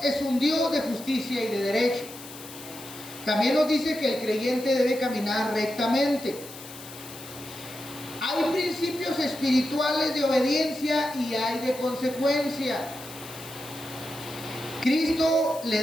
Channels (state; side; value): noise; left; hiss, 15 dB below the sound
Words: es un Dios de justicia y de derecho. También nos dice que el creyente debe caminar rectamente. Hay principios espirituales de obediencia y hay de consecuencia. Cristo